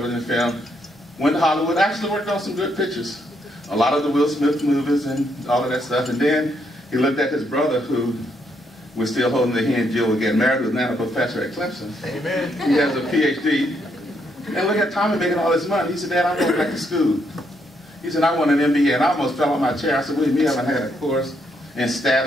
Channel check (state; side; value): normal; both; correlation 0.75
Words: and film, went to Hollywood, actually worked on some good pictures. A lot of the Will Smith movies and all of that stuff. And then he looked at his brother, who was still holding that he and Jill would get married, who's now a professor at Clemson. Amen. He has a PhD. And look at Tommy making all this money. He said, Dad, I'm going back to school. He said, I want an MBA. And I almost fell on my chair. I said, William, you haven't had a course in stat